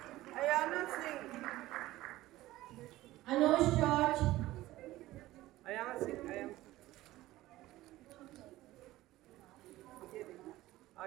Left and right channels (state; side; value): quieter; left; 16.6 dB